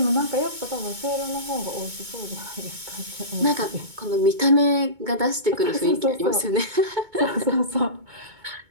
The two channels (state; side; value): late; left; 2.2 ms